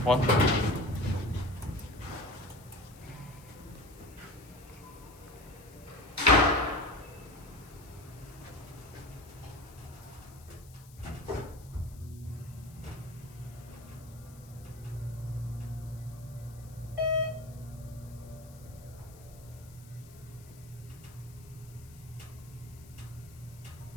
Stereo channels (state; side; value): noise; left; hiss, 22 dB below the sound